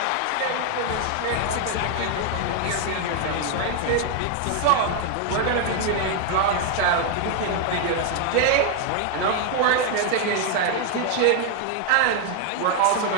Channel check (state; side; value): different; both; correlation 0.00